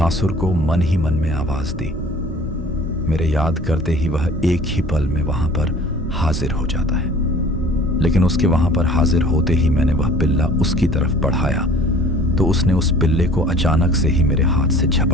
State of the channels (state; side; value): normal; both; correlation 0.49